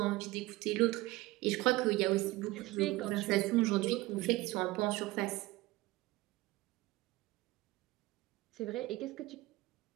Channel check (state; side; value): quieter; left; 19.7 dB